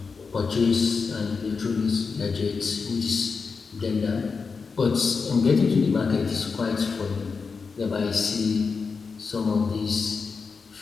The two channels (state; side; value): quieter; right; 5.0 dB